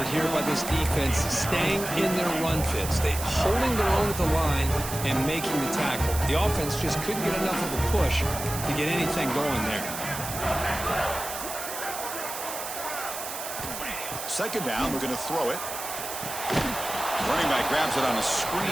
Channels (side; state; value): right; noise; hiss, 7 dB below the sound